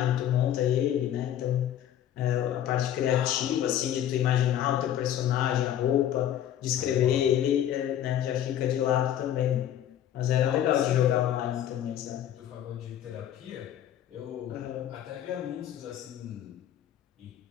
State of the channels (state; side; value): quieter; right; 11.0 dB